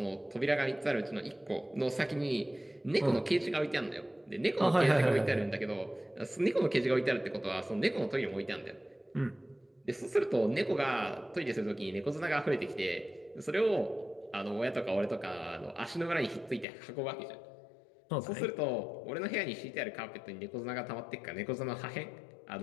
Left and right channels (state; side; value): drops out; right; at 16.7 s